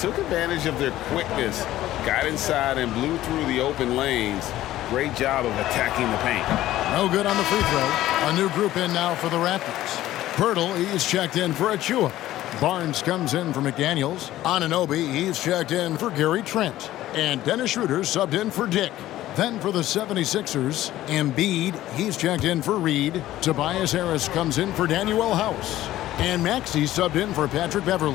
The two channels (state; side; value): quieter; right; 14.5 dB